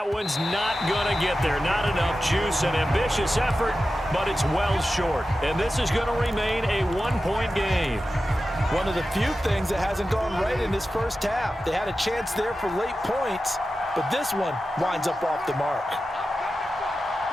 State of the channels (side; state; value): both; normal; correlation 0.93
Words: one's not going to get there. Not enough juice. An ambitious effort, but it's well short. And this is going to remain a 1-point game. One of the few things that hasn't gone right in this first half. They had a chance there for late points, but this one winds up off the mark.